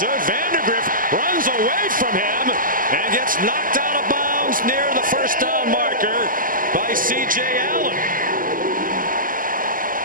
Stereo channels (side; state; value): left; late; 0.41 ms